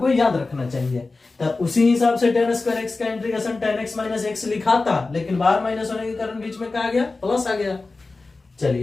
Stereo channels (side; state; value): right; quieter; 3.6 dB